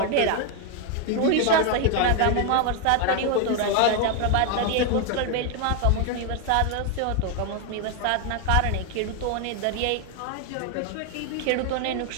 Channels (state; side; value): different; both; correlation 0.01